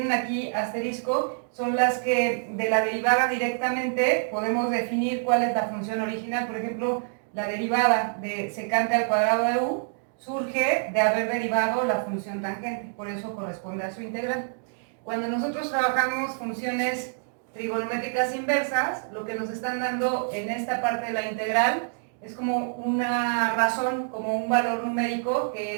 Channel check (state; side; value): silent; left; digital silence